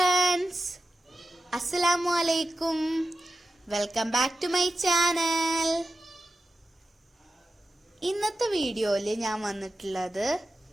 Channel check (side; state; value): both; normal; correlation 0.93